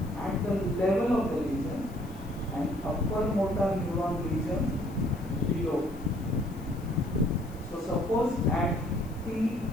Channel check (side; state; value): left; noise; hiss, 24 dB below the sound